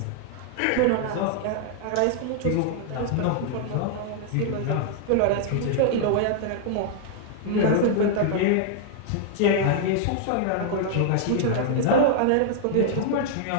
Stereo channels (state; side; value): different; both; correlation -0.01